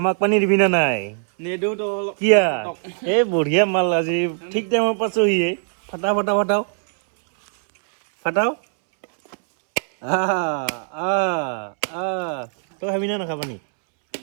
পানী দিবি না নাই কিয়া এই বঢ়িয়া মাল আজি ঠিক টাইমত পাইছোহি ফাটাও তই খাবি না নাখাবা নি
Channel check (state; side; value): silent; left; 65 dB below the other